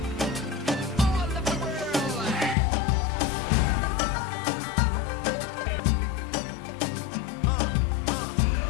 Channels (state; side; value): drops out; right; at 2.6 s